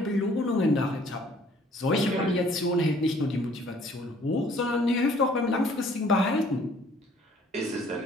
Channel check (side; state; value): both; normal; correlation 0.58